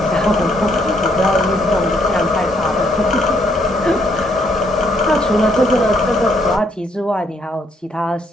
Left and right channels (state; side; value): normal; both; correlation 0.71